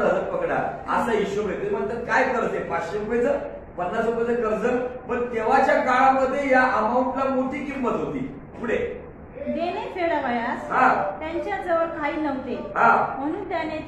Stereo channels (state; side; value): identical; both; correlation 1.00